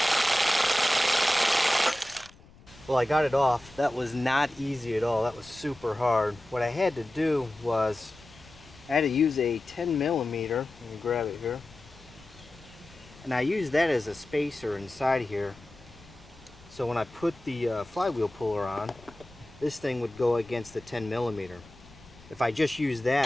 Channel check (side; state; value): left; noise; rumble, 23 dB below the sound